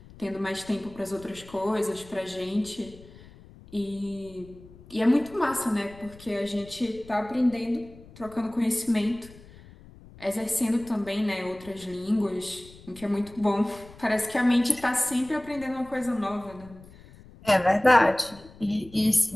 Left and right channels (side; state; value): left; noise; rumble, 21 dB below the sound